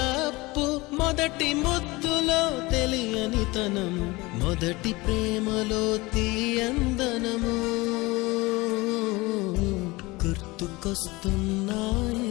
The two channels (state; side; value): quieter; right; 22.4 dB